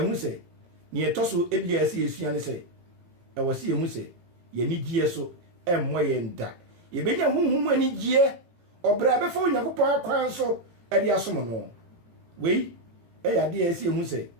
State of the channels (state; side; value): late; left; 18 ms